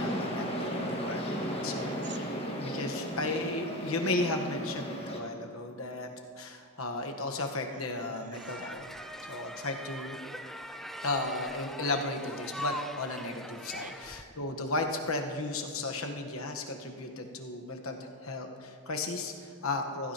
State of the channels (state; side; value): normal; both; correlation 0.10